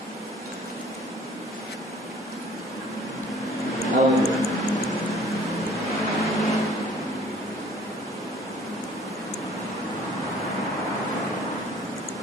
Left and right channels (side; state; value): both; normal; correlation 0.53